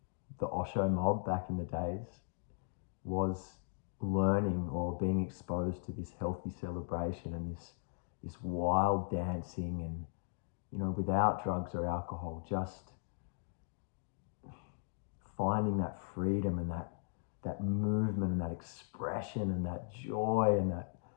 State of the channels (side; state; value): right; silent; digital silence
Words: the Osho mob back in the days was learning or being exposed to this healthy celebration and this wild dancing, and without drugs or alcohol, just finding that freedom and that movement and that expression and that joy and